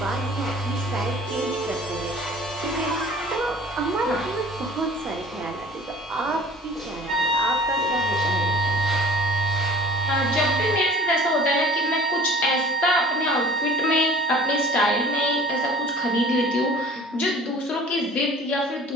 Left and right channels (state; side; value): normal; both; correlation 0.46